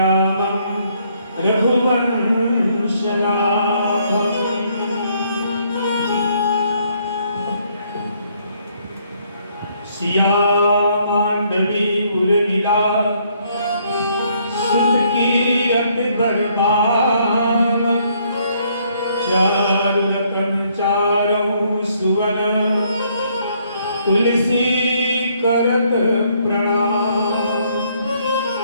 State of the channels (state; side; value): inverted; both; correlation -0.68